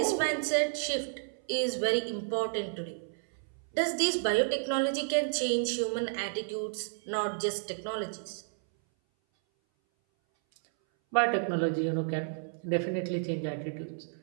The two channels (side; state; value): left; silent; 57 dB below the other